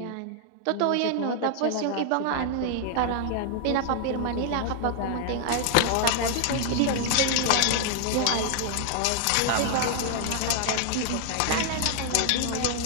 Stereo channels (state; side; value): different; both; correlation 0.00